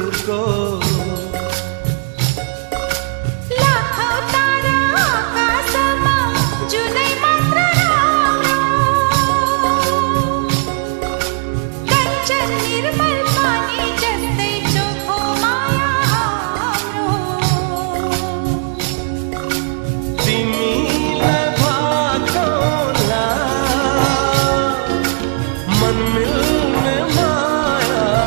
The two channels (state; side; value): silent; left; digital silence